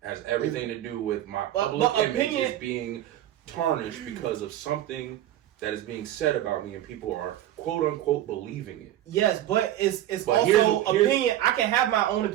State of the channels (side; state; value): left; quieter; 12.8 dB